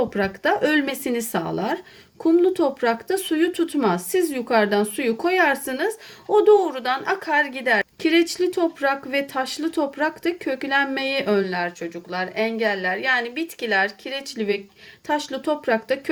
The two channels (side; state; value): both; identical; correlation 1.00